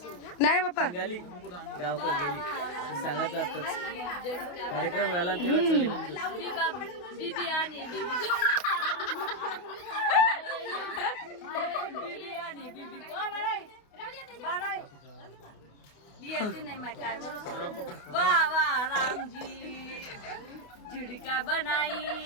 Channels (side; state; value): right; late; 28 ms